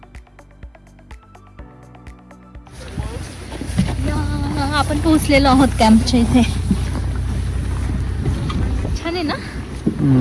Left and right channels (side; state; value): both; identical; correlation 1.00